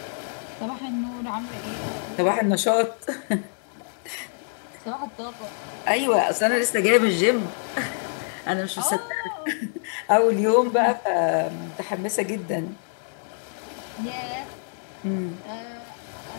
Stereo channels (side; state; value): right; silent; 61 dB below the other